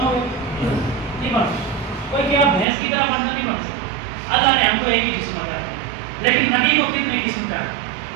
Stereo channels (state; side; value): drops out; left; at 2.7 s